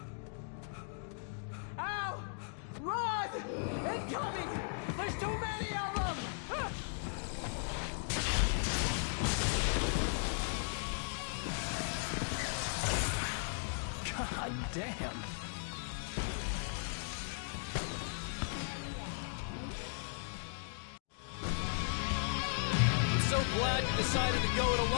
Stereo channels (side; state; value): right; silent; digital silence